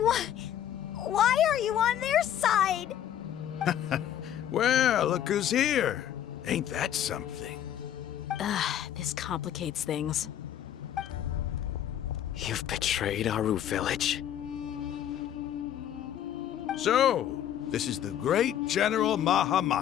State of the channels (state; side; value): quieter; right; 10.6 dB